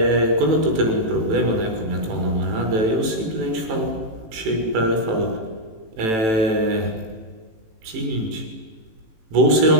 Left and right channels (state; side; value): late; left; 18 ms